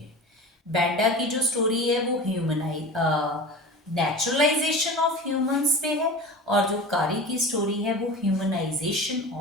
है। बैंडा की जो स्टोरी है वो नेचुरलाइजेशन ऑफ ह्यूमंस पे है और जो कारी की स्टोरी है वो ह्यूमनाइजेशन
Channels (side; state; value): both; normal; correlation 0.33